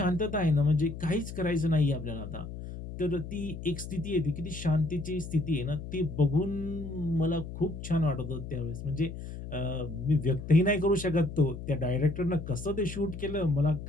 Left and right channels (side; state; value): left; noise; hum, 9 dB below the sound